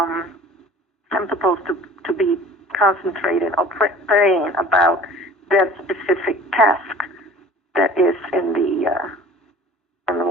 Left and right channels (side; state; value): both; normal; correlation 0.45